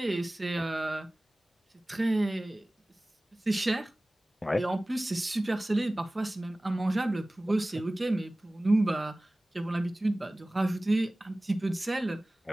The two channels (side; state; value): both; normal; correlation 0.98